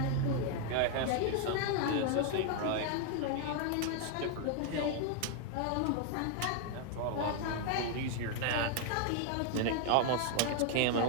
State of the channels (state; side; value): different; both; correlation 0.00